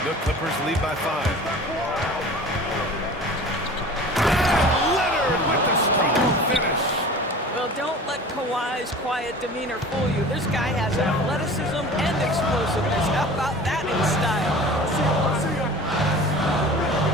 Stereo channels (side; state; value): both; normal; correlation 0.40